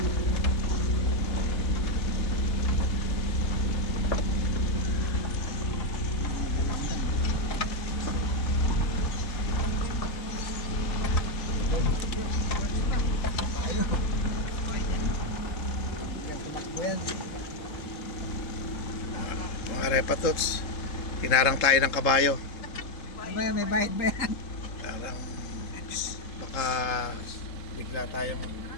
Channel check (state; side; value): late; right; 3.7 ms